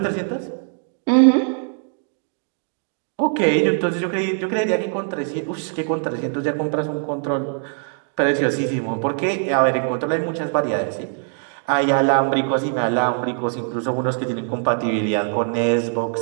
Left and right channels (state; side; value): silent; left; 56 dB below the other